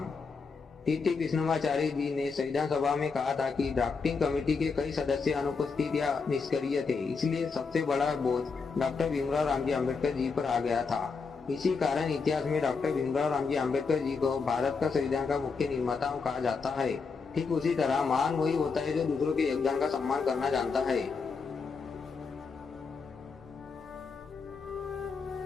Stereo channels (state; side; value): quieter; right; 4.9 dB